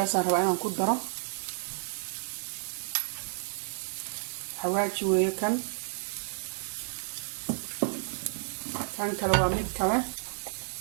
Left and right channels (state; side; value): silent; left; 57 dB below the other